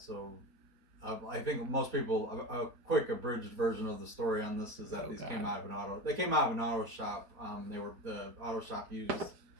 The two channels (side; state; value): left; late; 4.2 ms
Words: I think most people a quick abridged version of the story on this is that came out of an auto. They came out of an auto shop. The auto shop used